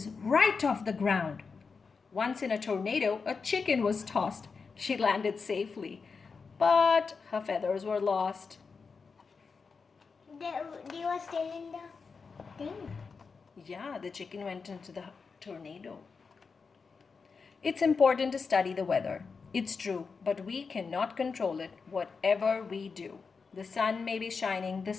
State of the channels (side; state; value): right; quieter; 5.0 dB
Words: right off the ground. Once in a tornado, a chicken was tossed. She landed safely, but her feathers were lost. They were still in the thing. Yeah, the chicken went into the tornado. It's important to study the weather. It's true, but we cannot control it, whatever we do. The sun may be shining, the